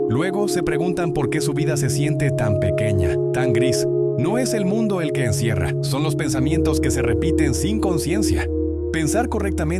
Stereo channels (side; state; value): both; identical; correlation 1.00